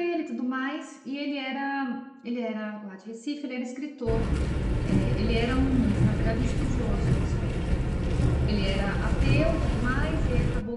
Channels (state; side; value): identical; both; correlation 1.00